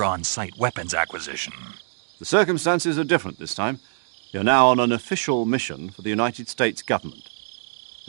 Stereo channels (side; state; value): left; silent; digital silence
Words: on-site weapons acquisition. The circumstances are different this time. You're now on an official mission for the United States government.